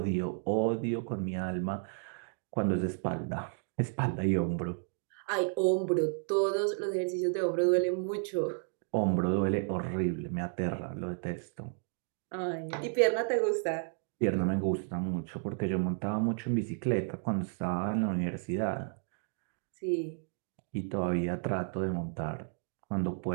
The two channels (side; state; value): left; silent; 56 dB below the other